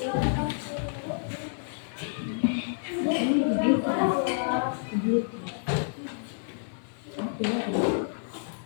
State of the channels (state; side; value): silent; right; 59 dB below the other